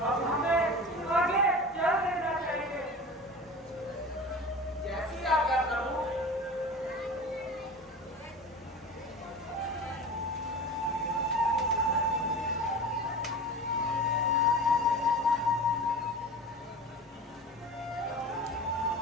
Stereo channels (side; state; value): both; normal; correlation 0.34